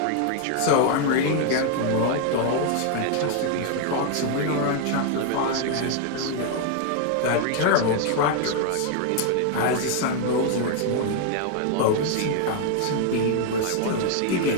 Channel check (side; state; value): both; different; correlation 0.00